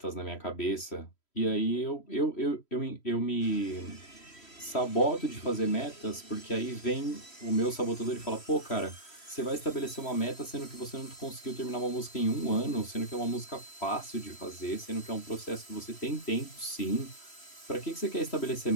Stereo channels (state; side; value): late; right; 3.1 ms